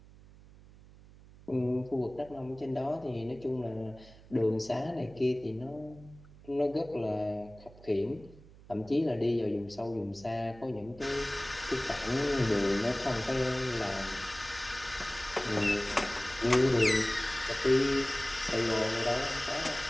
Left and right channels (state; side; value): noise; right; hum, 21 dB below the sound